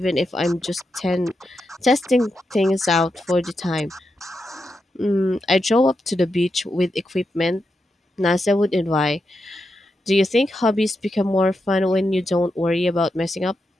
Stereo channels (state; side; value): normal; both; correlation 0.86